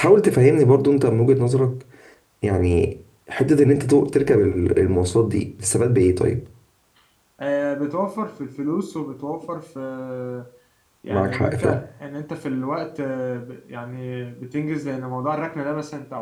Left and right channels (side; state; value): both; identical; correlation 1.00